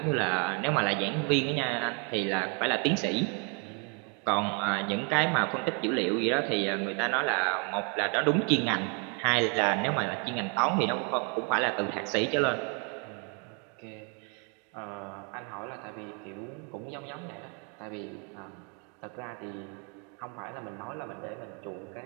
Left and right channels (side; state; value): left; quieter; 36.0 dB